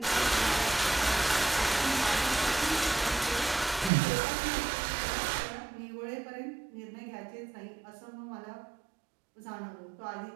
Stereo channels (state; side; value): drops out; left; at 3.9 s